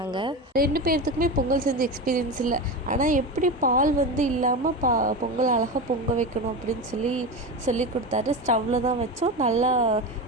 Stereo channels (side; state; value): both; normal; correlation 0.22